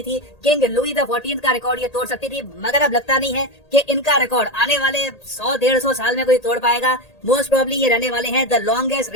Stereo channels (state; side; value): late; right; 1.8 ms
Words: थी। किंग लुई द 14 का रिकॉर्ड ये तोड़ सकती थी, मगर अब लगता नहीं है कि इनका रिकॉर्ड आने वाले 100-150 साल में कोई तोड़ पाएगा। मोस्ट प्रोबेबली ये रहने वाले हैं the longest